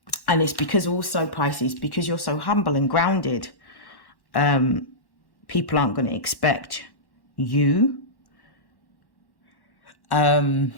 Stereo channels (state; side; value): late; right; 1.1 ms